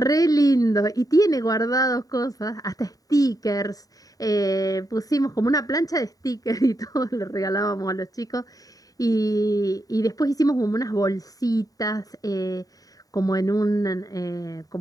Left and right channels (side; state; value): right; late; 0.18 ms